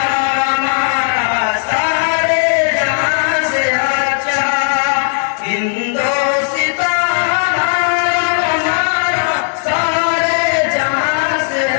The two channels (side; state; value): right; silent; 61 dB below the other